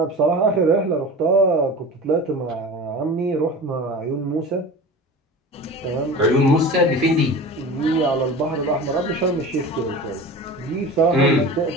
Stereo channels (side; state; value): both; normal; correlation 0.34